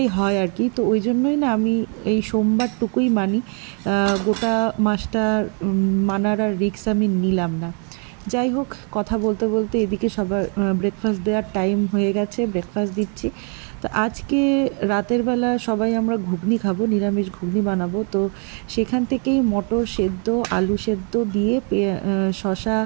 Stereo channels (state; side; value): quieter; left; 38.6 dB